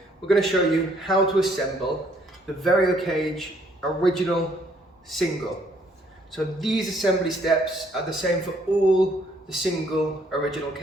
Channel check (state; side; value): normal; both; correlation 0.65